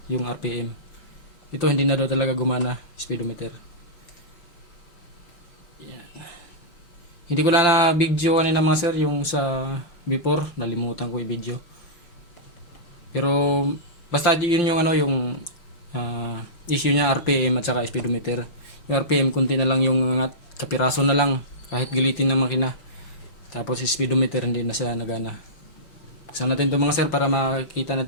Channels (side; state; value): right; late; 5.8 ms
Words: yung RPM. Ito hindi na daw talaga gumana, speedometer. Yan. Hindi ko na video kanina mga sir, yung sa before, nalimutan ko i-video. Pero basta yun yung issue niya, RPM at saka speedometer. Yung RPM kunti na lang yung angat, kapiraso na lang kahit galitin ng makina. Tapos speedometer hindi na siya nagana. Buksan natin ito mga sir para makita